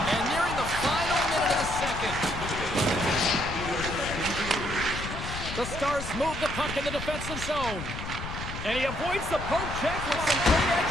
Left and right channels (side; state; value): left; noise; rumble, 7 dB below the sound